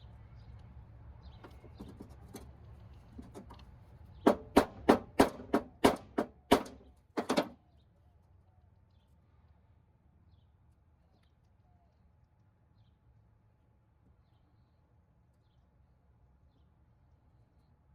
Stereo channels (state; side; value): identical; both; correlation 1.00